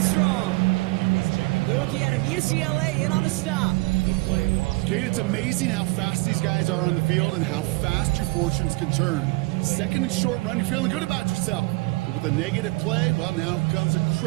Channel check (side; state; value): left; quieter; 24.8 dB